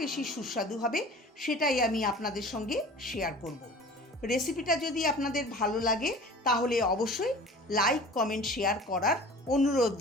বেশি সুস্বাদু হবে সেটাই আমি আপনাদের সঙ্গে শেয়ার করব। রেসিপিটা যদি আপনাদের ভালো লাগে তাহলে অবশ্যই লাইক, কমেন্ট, শেয়ার করার অনুরোধ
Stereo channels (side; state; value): both; normal; correlation 0.42